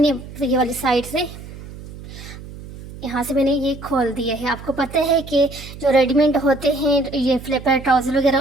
ये वाली साइड से यहाँ से मैंने ये खोल दिया है। आपको पता है कि जो रेडीमेड होते हैं ये फ्लिपर ट्राउज़र वगैरह,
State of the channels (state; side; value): noise; right; hum, 14 dB below the sound